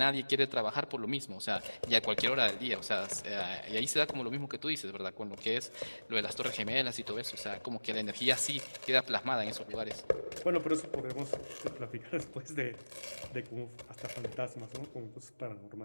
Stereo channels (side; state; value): both; inverted; correlation -1.00